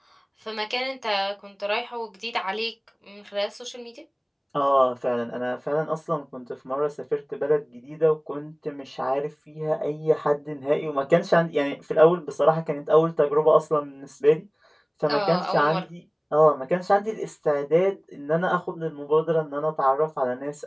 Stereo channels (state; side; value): identical; both; correlation 1.00